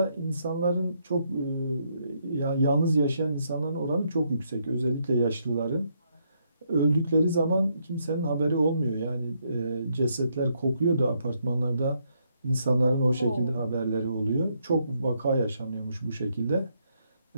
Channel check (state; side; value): inverted; both; correlation -0.75